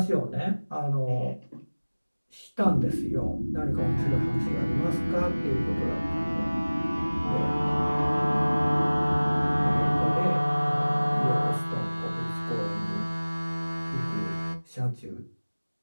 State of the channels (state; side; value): inverted; both; correlation -1.00